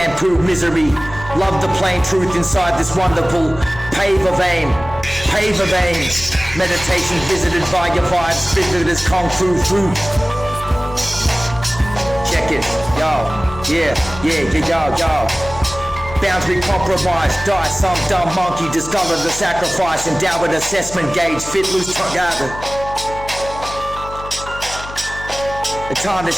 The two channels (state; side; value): noise; left; hum, 13 dB below the sound